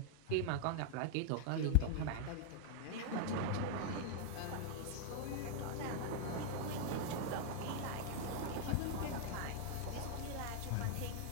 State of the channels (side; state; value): both; different; correlation 0.00